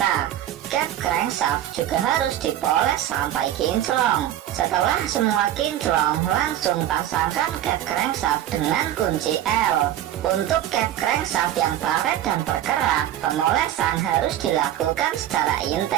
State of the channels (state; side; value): quieter; left; 12.1 dB